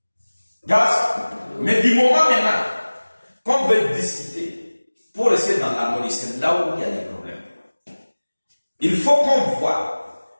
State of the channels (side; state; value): both; inverted; correlation -1.00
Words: Mais du moment maintenant qu'on veut discuter pour rester dans l'harmonie, c'est là où il y a des problèmes. Il faut qu'on voit,